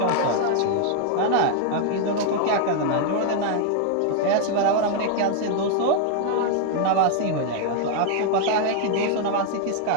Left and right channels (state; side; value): different; both; correlation 0.00